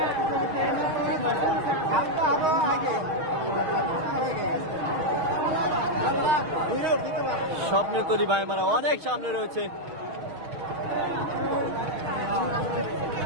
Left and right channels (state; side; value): late; left; 6.4 ms